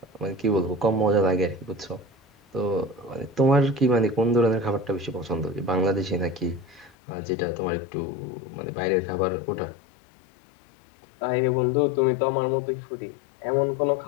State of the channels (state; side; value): drops out; right; at 7.0 s